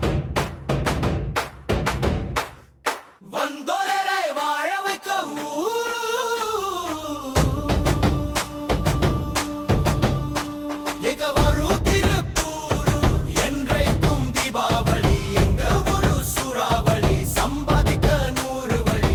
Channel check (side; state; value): both; identical; correlation 1.00